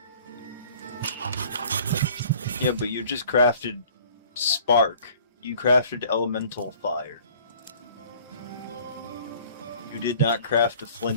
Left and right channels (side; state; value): both; inverted; correlation -0.52